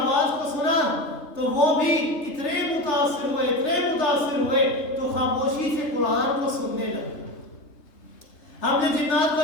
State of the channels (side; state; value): right; late; 3.3 ms